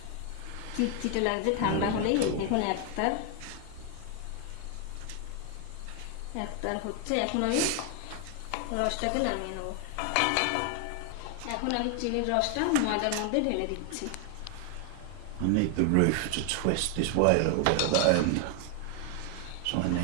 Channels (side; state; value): both; different; correlation 0.00